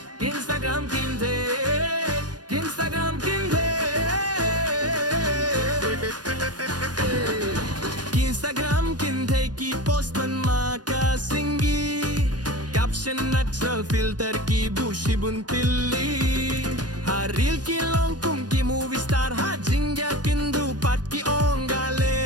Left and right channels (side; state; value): left; late; 0.69 ms